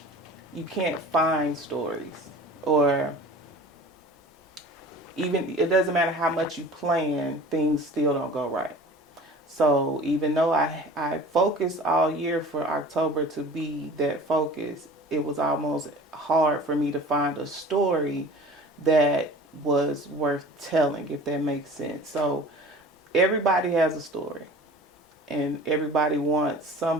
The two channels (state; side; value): normal; both; correlation 0.42